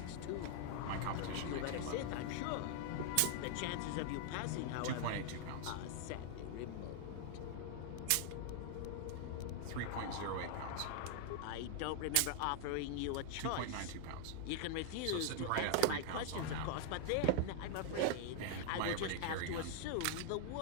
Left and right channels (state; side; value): different; both; correlation -0.01